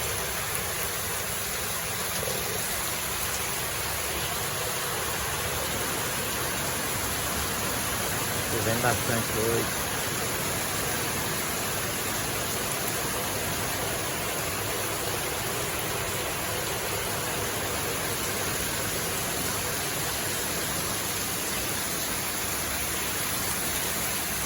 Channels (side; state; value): both; identical; correlation 1.00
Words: Chovendo bastante hoje.